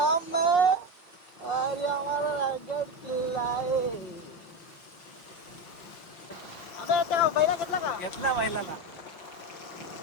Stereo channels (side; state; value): right; late; 5.4 ms